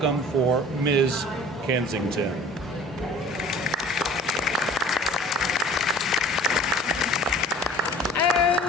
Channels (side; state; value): both; normal; correlation 0.47